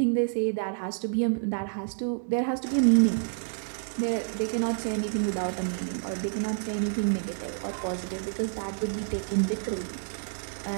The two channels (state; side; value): silent; left; digital silence